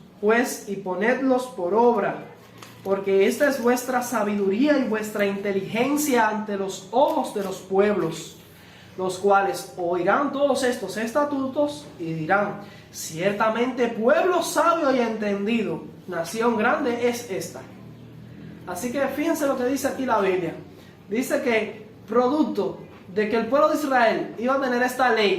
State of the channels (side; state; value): both; identical; correlation 1.00